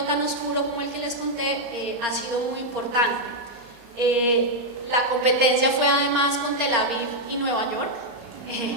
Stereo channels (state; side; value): late; left; 35 ms